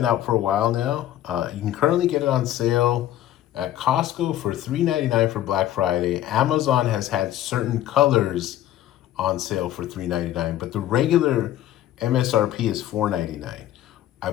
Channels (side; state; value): right; quieter; 12.8 dB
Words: out for a while now. You can currently get it on sale at Costco for $3.99 for Black Friday. Amazon has had certain colors on sale for $3.99, but the regular MSRP is $4.99. I